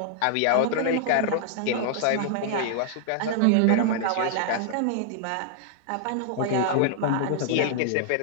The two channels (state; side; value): different; both; correlation -0.01